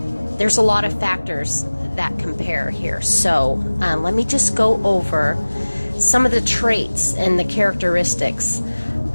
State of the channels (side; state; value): both; inverted; correlation -1.00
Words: there's a lot of factors that compare here. So let me just go over some of the traits and the characteristics